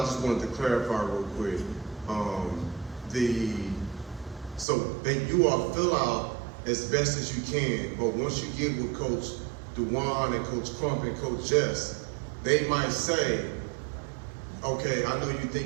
just wanted to clarify real quick. You all fill out as best as you can, but once you get with Coach DeOni and Coach Crump and Coach Jess, they might say, okay, I know you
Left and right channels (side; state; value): left; drops out; at 4.7 s